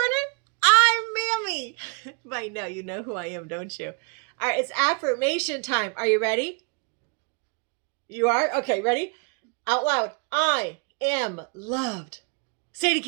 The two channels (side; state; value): left; quieter; 35.3 dB